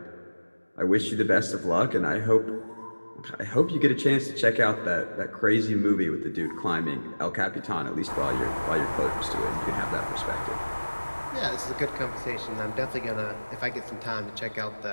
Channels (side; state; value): both; inverted; correlation -1.00